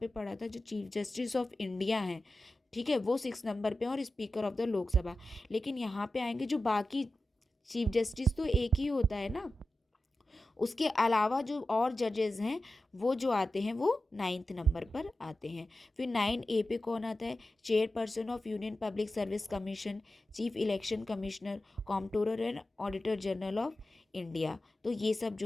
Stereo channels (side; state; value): both; normal; correlation 0.93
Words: पढ़ा था जो चीफ जस्टिस ऑफ इंडिया है, ठीक है, वो 6 नंबर पे, और स्पीकर ऑफ द लोकसभा। लेकिन यहाँ पे आएंगे जो बाकी चीफ जस्टिस तो एक ही होता है ना, उसके अलावा जो और जजेस हैं वो जो आते हैं वो 9th नंबर पर आते हैं। फिर 9A पे कौन आता है, chairperson of union public service commission, chief election commissioner, comptroller and auditor general of India. तो ये सब